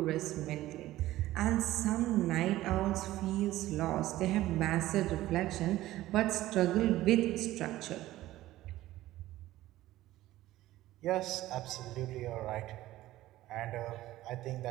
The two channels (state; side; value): quieter; left; 15.6 dB